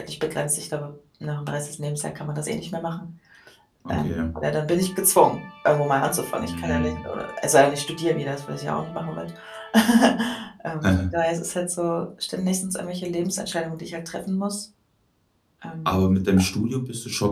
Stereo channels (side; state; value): both; identical; correlation 1.00